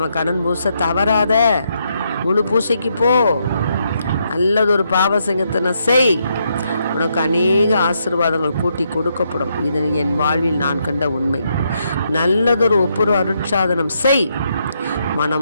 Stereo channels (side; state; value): both; inverted; correlation -0.78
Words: கடன் பூச தவறாத, முழு பூசைக்கு போ, நல்லதொரு பாவ சங்கத்தனை செய், உனக்கு அநேக ஆசீர்வாதங்கள் கூட்டி கொடுக்கப்படும். இது என் வாழ்வில் நான் கண்ட உண்மை. நல்லதொரு ஒப்புரு அருட்சாதனம் செய்,